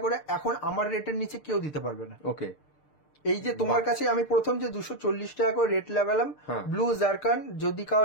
করে এখন আমার রেটের নিচে কেউ দিতে পারবে না। ওকে, এই যে তোমার কাছে আমি প্রথম যে 240 টাকা করে রেট লাগালাম, ব্লু জারকান, যদি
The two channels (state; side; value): late; right; 6.7 ms